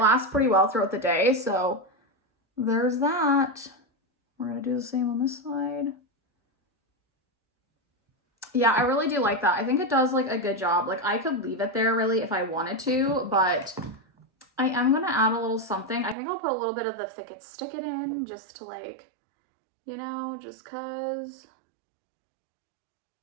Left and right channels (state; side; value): drops out; left; at 16.2 s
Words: lasts pretty well throughout the day. So there's that. We're gonna do the same on this side. Yeah, I really do like that. I think it does like a good job. Like, I could leave it there really if I wanted to, but I am gonna add a little something. I think I'll put a little bit of the Thick It Stick It in just to like, you know, just cause.